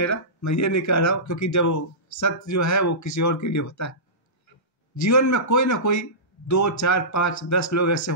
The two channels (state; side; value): normal; both; correlation -0.20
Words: मैं ये नहीं कह रहा हूँ, क्योंकि जब वो सत्य जो है वो किसी और के लिए होता है। जीवन में कोई ना कोई 2, 4, 5, 10 लोग ऐसे